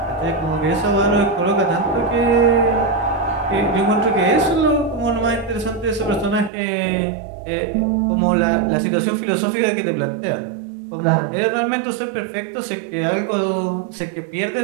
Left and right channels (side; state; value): left; drops out; at 6.5 s